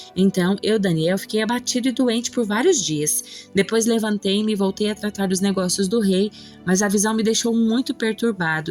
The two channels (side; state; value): both; identical; correlation 1.00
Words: Então, eu, Daniel, fiquei abatido e doente por vários dias. Depois levantei-me e voltei a tratar dos negócios do rei, mas a visão me deixou muito